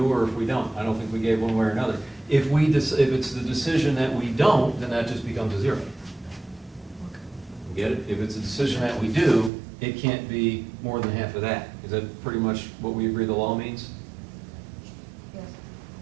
or if we don't. I don't think we gave one way or another. If it's the decision that we don't, then that just becomes a zero. Get it? If it's a decision that we do, it can't be more than half of that. Is that pretty much what we agree the law means? Yes.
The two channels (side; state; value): left; drops out; at 9.5 s